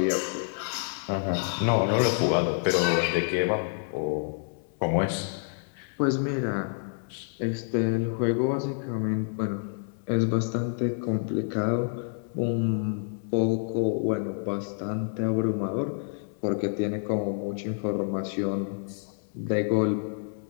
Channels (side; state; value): right; silent; digital silence